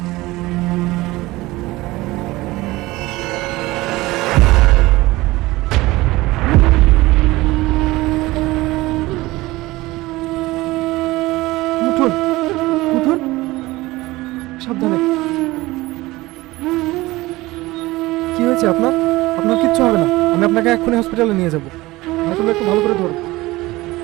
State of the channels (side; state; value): left; quieter; 19.6 dB